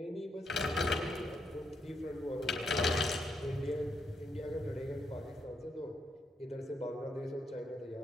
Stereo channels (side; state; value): both; normal; correlation 0.78